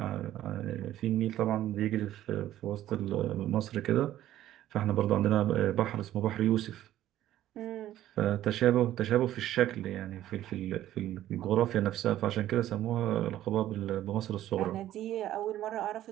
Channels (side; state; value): left; quieter; 13.1 dB